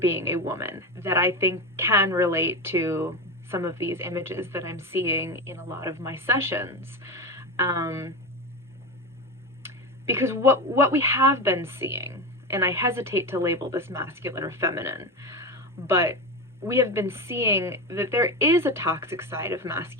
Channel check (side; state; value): both; normal; correlation 0.20